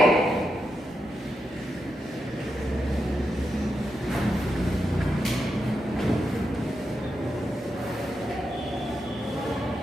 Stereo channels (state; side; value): normal; both; correlation 0.86